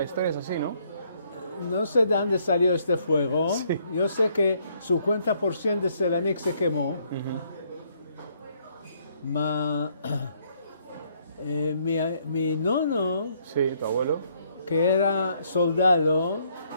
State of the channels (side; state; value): both; inverted; correlation -0.69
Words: historia es así, ¿no? no sé de dónde salió este fuego. Sí. Yo sé que 50% de Selanik se quemó. Mi nono, Sí, tu abuelo. que era soldado,